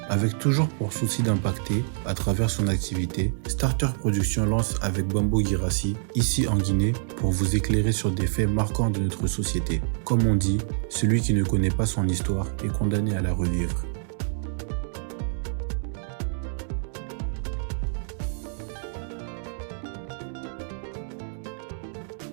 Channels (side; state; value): left; silent; 60 dB below the other